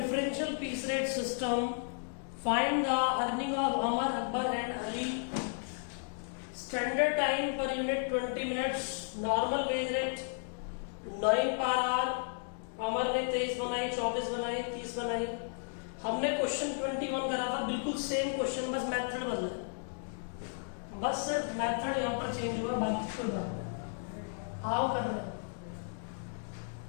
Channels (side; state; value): right; silent; digital silence